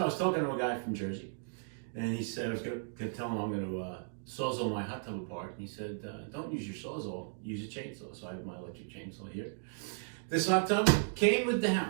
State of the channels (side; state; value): left; silent; digital silence